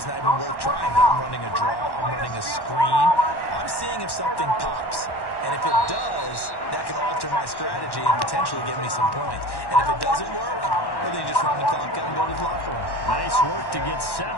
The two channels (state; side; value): late; right; 1.1 ms